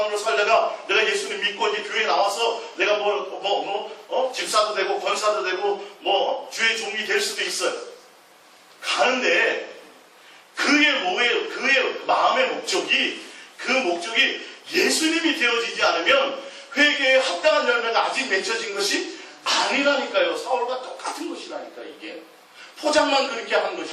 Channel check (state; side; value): identical; both; correlation 1.00